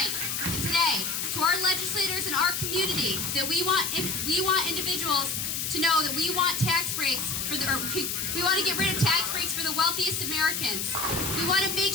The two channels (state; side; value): noise; left; hiss, 2 dB below the sound